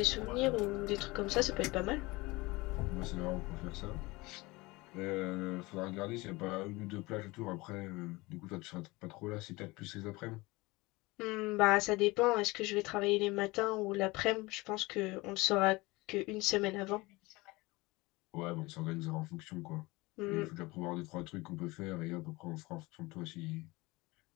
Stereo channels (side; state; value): right; quieter; 22.5 dB